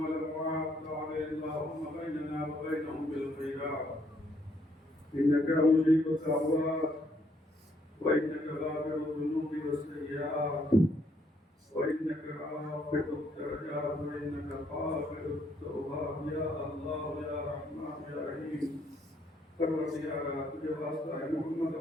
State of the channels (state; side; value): normal; both; correlation 0.70